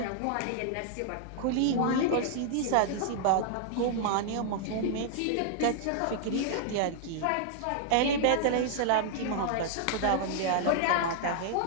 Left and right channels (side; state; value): both; different; correlation -0.01